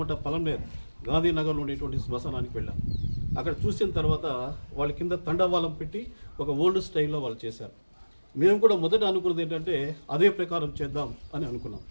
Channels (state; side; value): inverted; both; correlation -1.00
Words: పలంనేర్ గాంధీనగర్లో ఉండేటువంటి శ్మశానానికి వెళ్ళాం. అక్కడ చూసిన తర్వాత వాళ్ళ కింద తండవాలం పెట్టి ఒక ఓల్డ్ స్టైల్లో వాళ్ళు చేశారు. మేము కూడా మొదట అనుకున్నది ఏంటంటే అదే ప్రకారం చేద్దాం అని అనుకున్నాం.